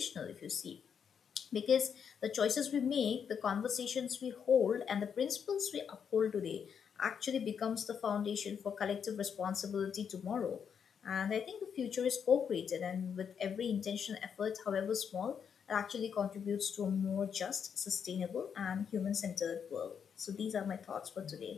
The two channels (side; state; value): right; quieter; 7.3 dB